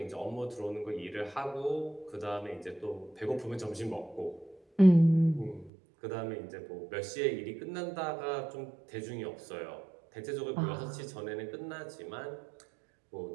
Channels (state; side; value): drops out; left; at 5.7 s